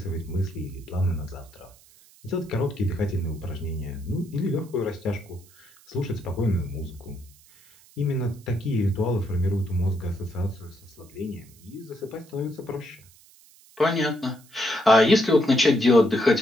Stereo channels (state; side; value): noise; right; hiss, 26 dB below the sound